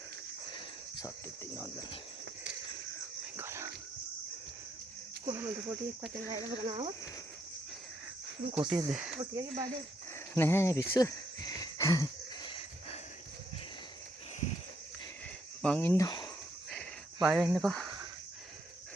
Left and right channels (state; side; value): normal; both; correlation 0.74